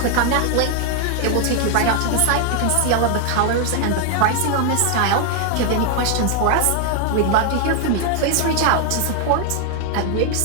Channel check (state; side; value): different; both; correlation 0.00